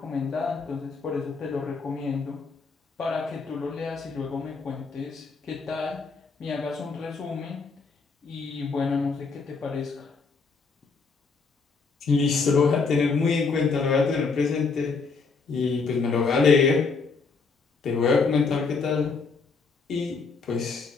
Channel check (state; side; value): quieter; right; 4.7 dB